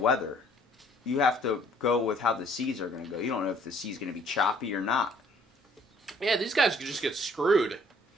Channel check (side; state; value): both; normal; correlation 0.59